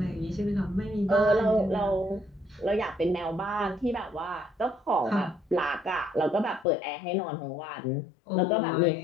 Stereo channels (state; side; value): drops out; right; at 6.7 s